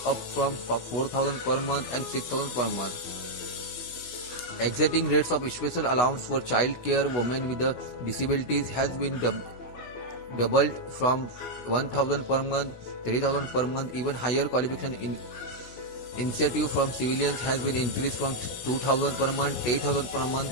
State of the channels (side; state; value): right; late; 16 ms